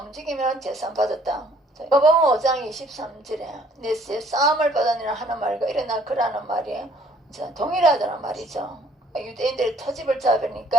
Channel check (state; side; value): normal; both; correlation 0.61